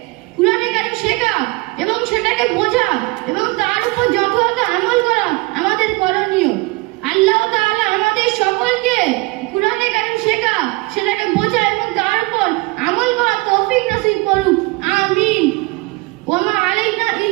কুরআনে কারীম শেখা এবং সেটাকে বোঝা এবং তার উপর যথাযথ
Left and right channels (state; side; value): quieter; left; 23.4 dB